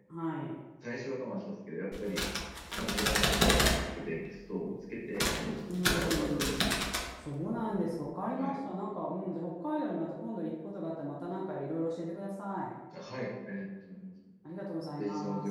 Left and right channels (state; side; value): identical; both; correlation 1.00